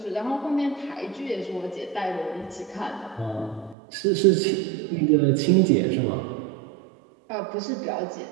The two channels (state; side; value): drops out; left; at 3.8 s